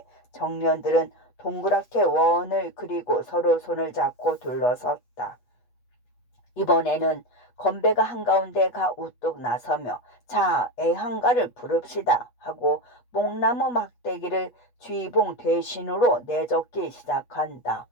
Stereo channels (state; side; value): late; right; 8.3 ms